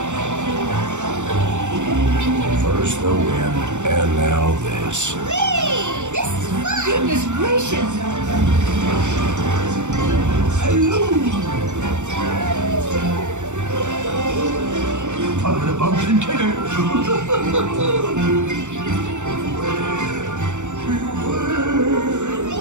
Gondolas. Whee! This is fun! Goodness gracious! Hello! Follow the bumps and tickers.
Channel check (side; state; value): left; late; 0.84 ms